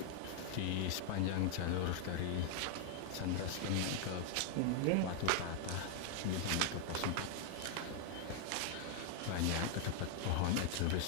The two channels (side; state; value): both; different; correlation 0.00